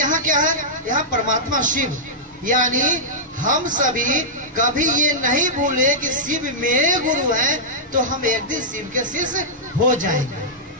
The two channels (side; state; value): both; normal; correlation -0.10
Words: क्या है, यहाँ परमात्मा शिव। यानी हम सभी कभी ये नहीं भूले कि शिव मेरे गुरु हैं, तो हम एक दिन शिव के शिष्य हो जाएंगे,